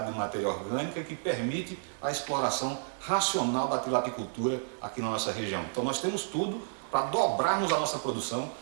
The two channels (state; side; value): silent; left; digital silence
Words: de matéria orgânica que permite a exploração racional da tilapicultura aqui na nossa região. Então nós temos tudo para dobrarmos a nossa produção,